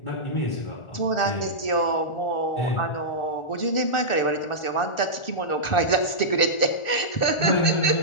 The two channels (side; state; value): right; late; 1.4 ms